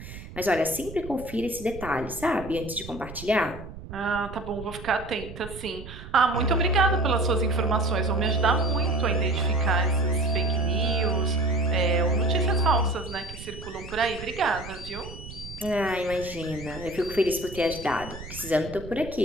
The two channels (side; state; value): right; noise; rumble, 13 dB below the sound